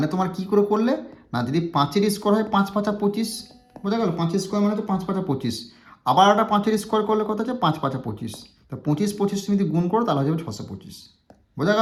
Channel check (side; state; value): both; identical; correlation 1.00